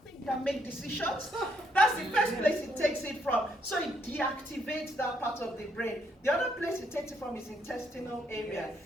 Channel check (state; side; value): normal; both; correlation 0.73